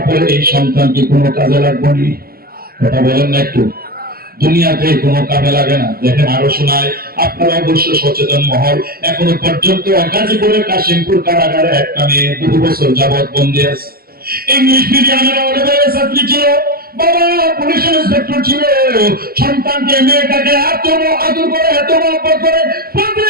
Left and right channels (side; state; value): left; late; 0.44 ms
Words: পরে এই সন্তান কি কোনো কাজে লাগবে নি? কথা বলেন না একটু। দুনিয়াতে কোনো কাজে লাগে না। দেখেন আরো শোনায়, আপনারা অবশ্য সচেতন মহল। এখনো পর্যন্ত গাজীপুরের কাশিমপুর কারাগারে একটা মেয়ে 2 বছর যাবৎ বন্দী আছে। ইংলিশ মিডিয়ামের অনেক ছাত্রী ছিল, বাবা পুলিশ ইন্সপেক্টর ছিল। সন্তানকে মেয়েটাকে এত আদর করে, এত মহব্বত করে, প্রতি